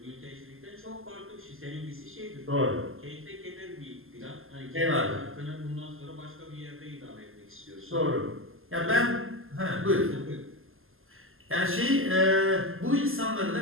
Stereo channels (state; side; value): late; left; 0.60 ms